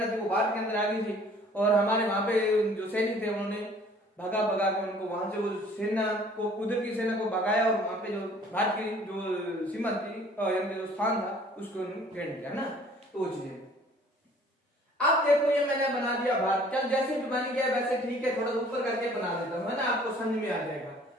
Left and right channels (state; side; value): normal; both; correlation 0.54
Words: थी वो भारत के अंदर आ गई थी, और हमारे वहां पे जो सैनिक थे उन्होंने भगा भगा के उनको वहां से, वो सेना को, उधर की सेना को भगाया, और वहां पे जो भारत की जो सीमा थी, यानी जो स्थान था उसको घेर दिया, है ना। तो वो चीज, अब देखो ये मैंने बना दिया भारत, चल जैसे भी बन गया वैसे ठीक है, थोड़ा ऊपर करके बना देता हूं, है ना, आपको समझ में आ जाएगा।